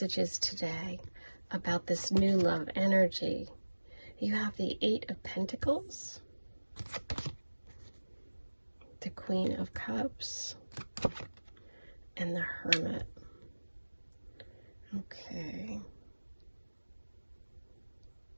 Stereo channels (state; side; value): inverted; both; correlation -1.00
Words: today about this new love energy. You have the 8 of Pentacles, the Queen of Cups, and the Hermit. Okay.